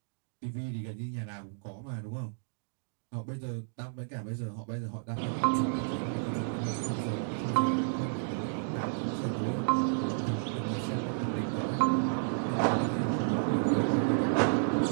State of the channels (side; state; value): left; silent; digital silence